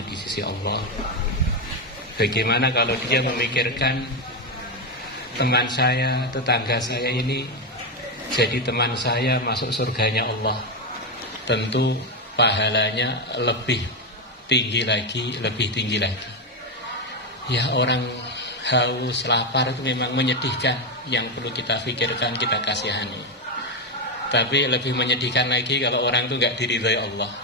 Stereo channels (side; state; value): both; normal; correlation 0.09